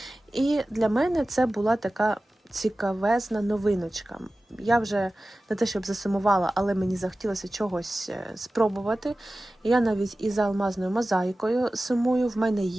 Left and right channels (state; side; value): normal; both; correlation 0.96